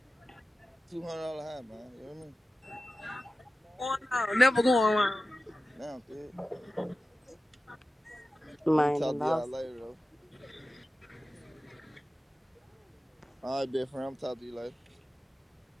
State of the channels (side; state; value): both; normal; correlation 0.94